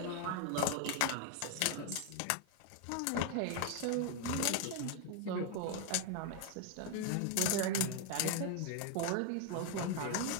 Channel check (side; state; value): both; different; correlation 0.00